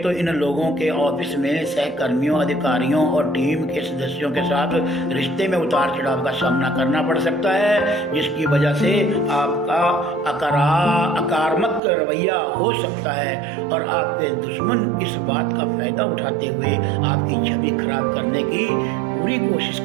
तो इन लोगों के ऑफिस में सहकर्मियों, अधिकारियों और टीम के सदस्यों के साथ रिश्ते में उतार चढ़ाव का सामना करना पड़ सकता है, जिसकी वजह से आपका आक्रामक रवैया हो सकता है और आपके दुश्मन इस बात का फायदा उठाते हुए आपकी छवि खराब करने की पूरी कोशिश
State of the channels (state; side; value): drops out; left; at 11.8 s